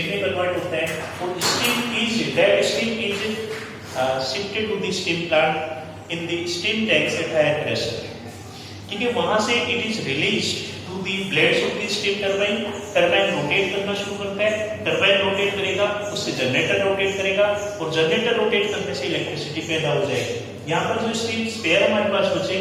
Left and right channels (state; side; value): identical; both; correlation 1.00